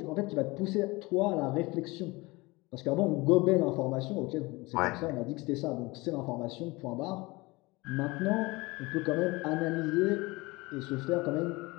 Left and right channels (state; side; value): quieter; right; 23.2 dB